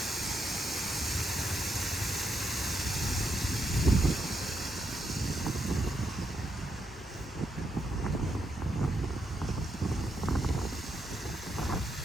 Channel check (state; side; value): normal; both; correlation 0.80